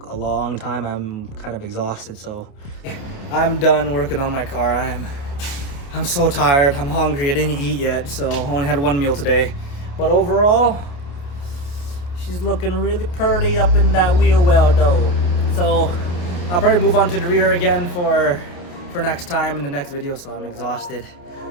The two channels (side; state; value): right; late; 28 ms